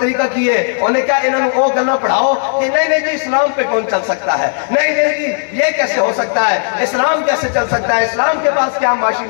کیے انہیں کہا انہوں او گلنا پڑھاؤ کہ نہیں جی اسلام پہ کون چل سکتا ہے نہیں جی یہ کیسے ہو سکتا ہے اسلام کیسے چل سکتا ہے اسلام کے پاس کیا معاشی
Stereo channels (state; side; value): silent; right; digital silence